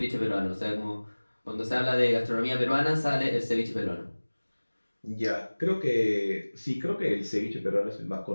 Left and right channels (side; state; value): both; inverted; correlation -1.00